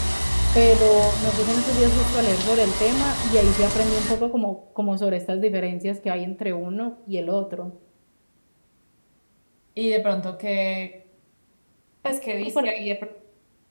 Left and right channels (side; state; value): both; inverted; correlation -1.00